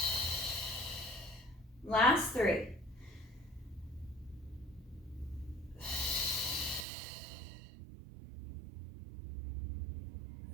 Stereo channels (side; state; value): left; drops out; at 6.9 s